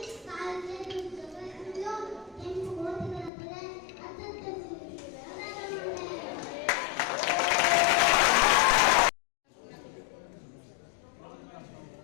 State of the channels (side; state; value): right; drops out; at 3.3 s